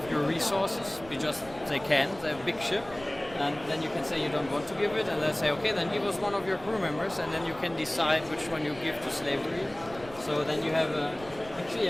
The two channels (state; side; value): noise; right; rumble, 18 dB below the sound